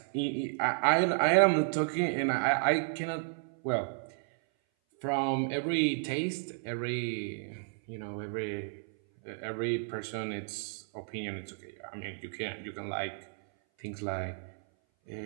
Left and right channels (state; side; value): silent; left; 56 dB below the other